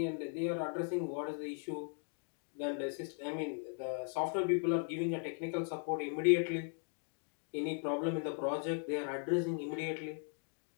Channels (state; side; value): silent; right; 52 dB below the other